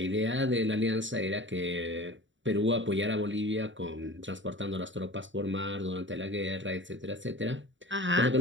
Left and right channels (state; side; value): late; left; 0.55 ms